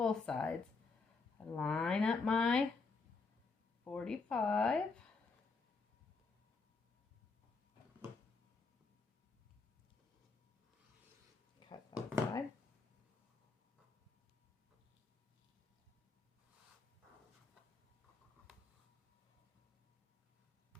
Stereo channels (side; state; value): right; quieter; 4.3 dB